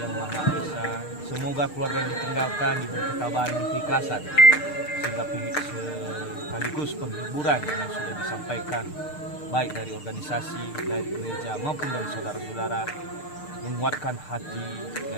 Semoga keluarga yang ditinggalkan diberi ketabahan dan keikhlasan, sehingga sekaligus penghiburan yang sudah disampaikan baik dari organisasi, dari gereja maupun dari saudara-saudara menguatkan hati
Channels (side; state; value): right; late; 6.6 ms